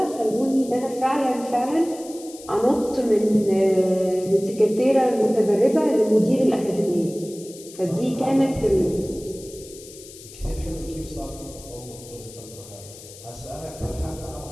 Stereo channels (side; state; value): left; noise; hiss, 18 dB below the sound